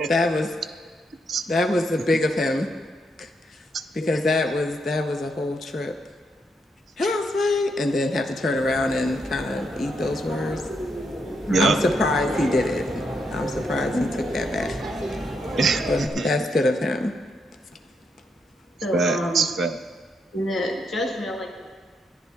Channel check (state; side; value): normal; both; correlation 0.79